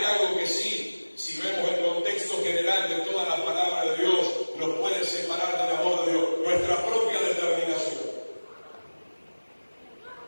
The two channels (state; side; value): inverted; both; correlation -1.00